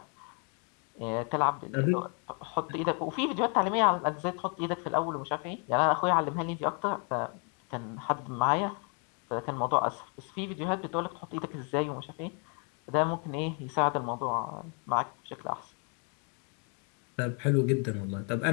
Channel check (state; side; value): quieter; right; 38.0 dB